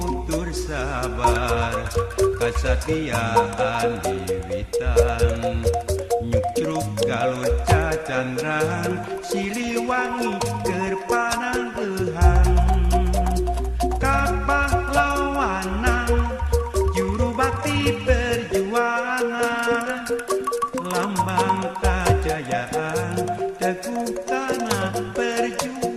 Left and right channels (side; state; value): both; identical; correlation 1.00